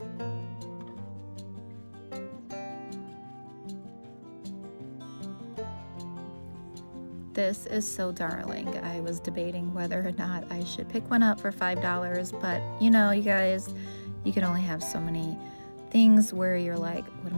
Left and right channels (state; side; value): inverted; both; correlation -1.00